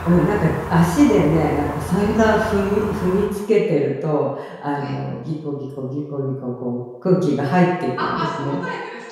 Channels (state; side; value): identical; both; correlation 1.00